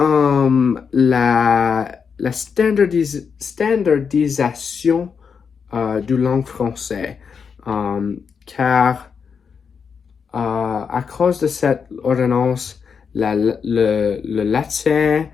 la standardisation du langue française. Car à cause de cette ordonnance, le latin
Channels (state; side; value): quieter; right; 6.2 dB